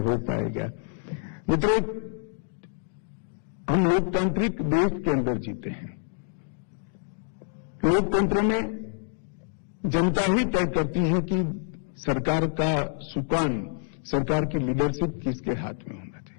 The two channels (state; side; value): silent; right; digital silence